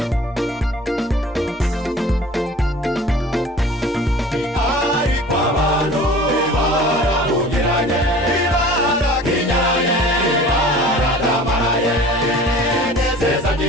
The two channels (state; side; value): normal; both; correlation 0.44